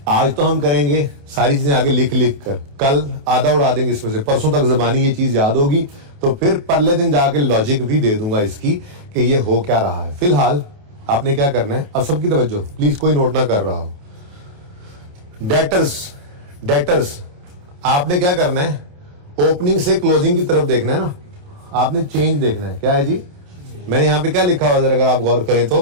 आज तो हम करेंगे सारी चीजें आगे लिख लिख कर, कल आधा उड़ा देंगे इसमें से, परसों तक जबानी ये चीज याद होगी, तो फिर परले दिन जाके लॉजिक भी दे दूंगा इसकी कि ये हो क्या रहा है। फिलहाल आपने क्या करना है, अब सबकी तवज्जो प्लीज, कोई नोट ना कर रहा हो। डेटर्स आपने क्या करना है, ओपनिंग से क्लोजिंग की तरफ देखना है ना, आपने चेंज देखना है। क्या है जी, मैंने यहां पे क्या लिखा हुआ जरा अगर आप गौर करें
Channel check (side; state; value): left; late; 28 ms